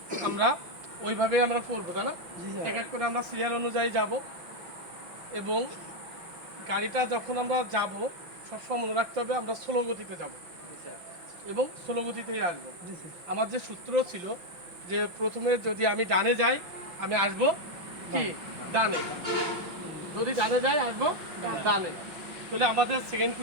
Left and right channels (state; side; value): late; left; 5.8 ms